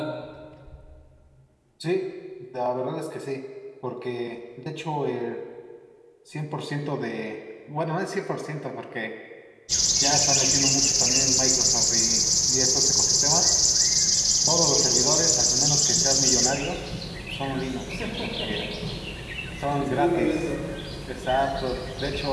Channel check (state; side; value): identical; both; correlation 1.00